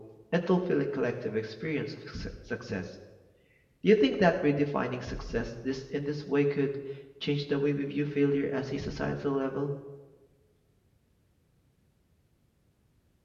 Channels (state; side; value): identical; both; correlation 1.00